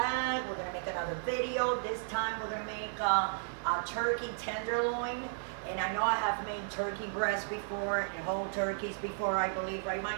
We're gonna make another video. This time we're gonna make a turkey tenderloin. And I know I have made turkey breast before and whole turkeys before, I believe, right,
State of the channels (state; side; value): silent; left; digital silence